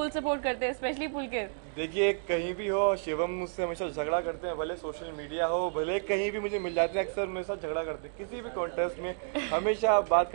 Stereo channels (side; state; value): left; silent; digital silence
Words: सपोर्ट करते हैं, स्पेशली पुलकित। देखिए, कहीं भी हो शिवम मुझसे हमेशा झगड़ा करते हैं, भले सोशल मीडिया हो, भले कहीं भी मुझे मिल जाते हैं, अक्सर मेरे साथ झगड़ा करते हैं। किसी भी कॉन्टेस्ट में हमेशा बात